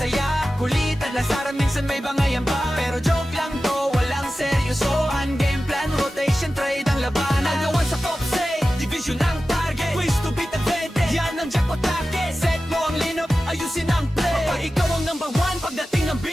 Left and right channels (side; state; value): both; normal; correlation 0.94